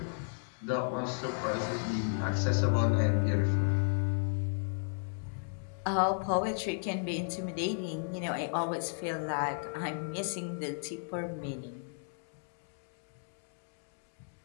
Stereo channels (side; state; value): right; silent; digital silence